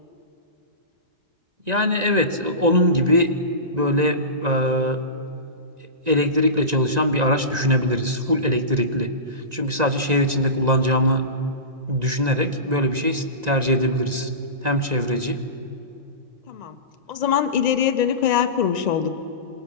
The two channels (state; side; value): late; left; 1.9 ms